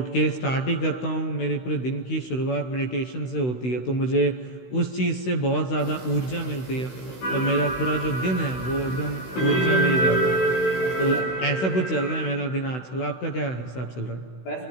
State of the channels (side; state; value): right; late; 16 ms